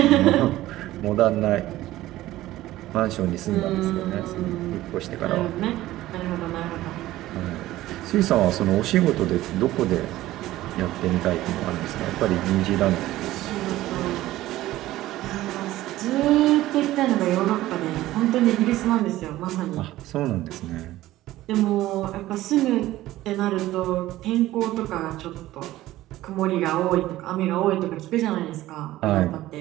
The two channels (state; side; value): quieter; left; 15.7 dB